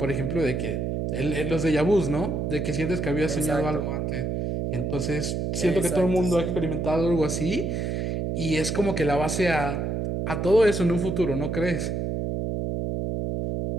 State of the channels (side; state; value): right; noise; hum, 1 dB below the sound